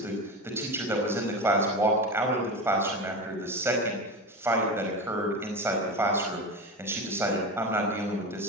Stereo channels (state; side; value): normal; both; correlation 0.23